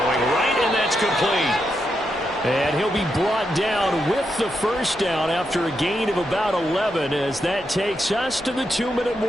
right, and that's complete. And he'll be brought down with the first down after a gain of about 11 as that takes us to the 2-minute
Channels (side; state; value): both; normal; correlation 0.83